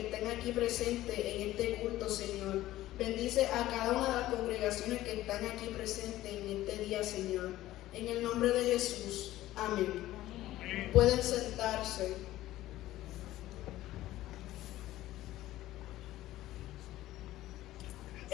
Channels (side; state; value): right; quieter; 15.3 dB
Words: estén aquí presentes en este culto, Señor. Bendice a cada una de las congregaciones que están aquí presentes en este día, Señor. En el nombre de Jesús. Amén. Pueden sentarse.